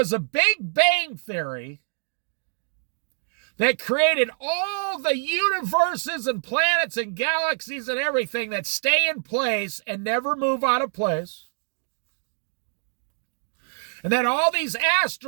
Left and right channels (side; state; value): left; silent; digital silence